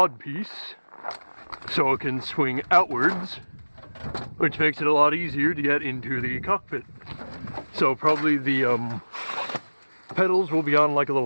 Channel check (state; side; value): inverted; both; correlation -1.00